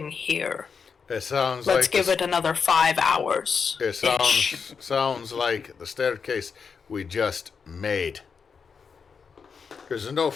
here. It sounds Let's like give it another 5 hours. It sounds like the staircase we just made. There's no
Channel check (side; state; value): right; quieter; 5.8 dB